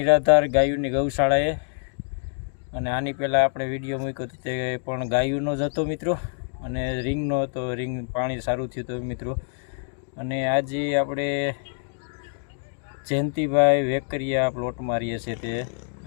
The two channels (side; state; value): right; silent; digital silence